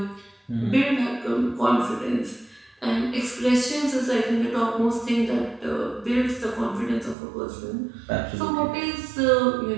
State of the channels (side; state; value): left; drops out; at 7.2 s